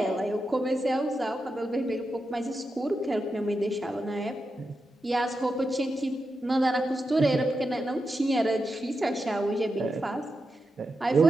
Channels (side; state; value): both; normal; correlation 0.88